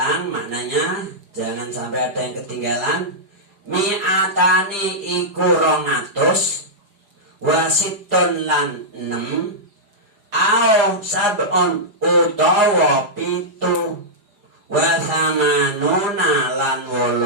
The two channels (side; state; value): left; late; 5.0 ms